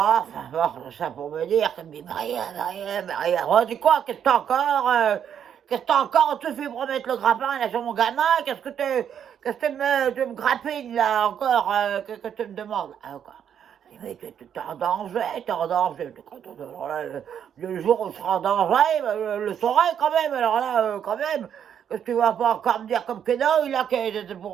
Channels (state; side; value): quieter; left; 8.7 dB